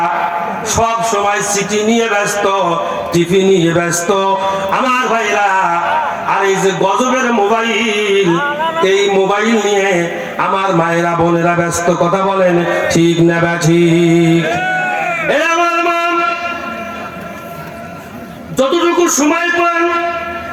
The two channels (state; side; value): identical; both; correlation 1.00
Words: সব সময় সিটি নিয়ে ব্যস্ত, টিভি নিয়ে ব্যস্ত আমার ভাইরা। আর এই যে গজবের মোবাইল, এই মোবাইল নিয়ে আমার মায়েরা বোনেরা ব্যস্ত। কথা বলেন ঠিক না ঠিক? এই আমার মা যতটুকু সময় পান,